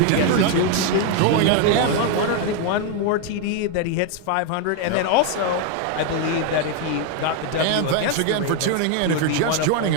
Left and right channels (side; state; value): both; different; correlation 0.01